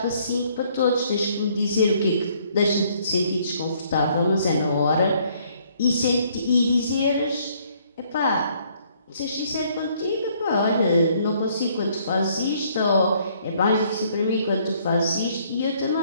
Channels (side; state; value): both; inverted; correlation -0.65